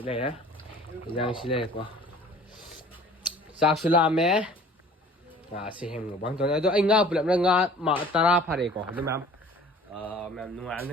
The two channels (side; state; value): both; normal; correlation 0.48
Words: này á giang xí này quá sao xí làm mẹ xí hem mang toàn này đó anh ngà bự lắm ngà mà tara phải có đúng không mẹ nung ăn